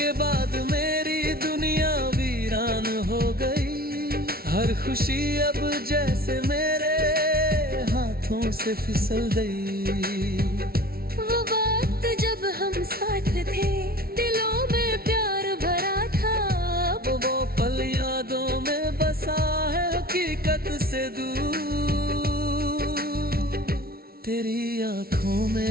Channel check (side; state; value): left; late; 0.44 ms